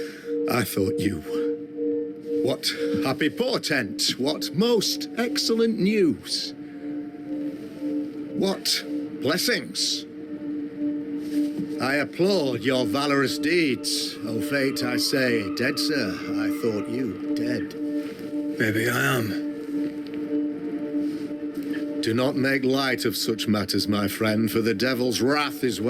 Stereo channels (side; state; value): both; identical; correlation 1.00